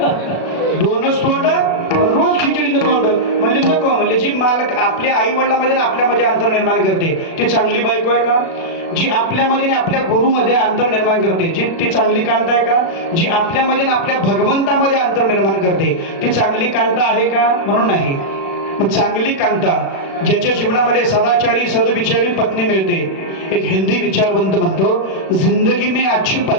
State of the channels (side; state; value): right; late; 36 ms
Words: दोनच तोंड रोज खिचडीने बोंड. म्हणजे नको म्हणले, जी मालक आपल्या आई वडिलांमध्ये आपल्यामध्ये अंतर निर्माण करते ती चांगली बायको आहे का? जी आपल्यामध्ये आपल्या गुरुमध्ये अंतर निर्माण करते ती चांगली कांता आहे का? जी आपल्यामध्ये आपल्या भगवंतामध्ये अंतर निर्माण करते ती चांगली कांता आहे का? म्हणून नाही. मग चांगली कांता ज्याच्या जीवनामध्ये सदाचारी सदविचारी पत्नी मिळते. एक हिंदी विचारवंत म्हणतो, जिंदगी में अच्छी